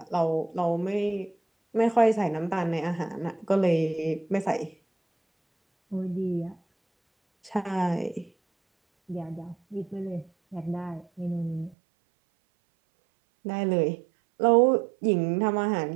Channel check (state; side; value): drops out; left; at 11.8 s